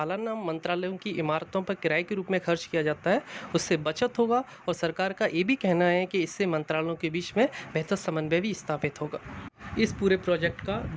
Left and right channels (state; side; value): identical; both; correlation 1.00